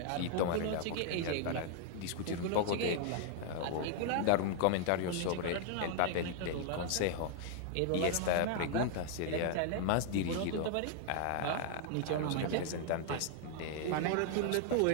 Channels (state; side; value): different; both; correlation -0.01